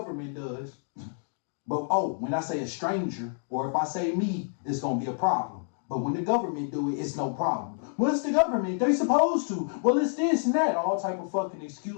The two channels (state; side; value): silent; right; 59 dB below the other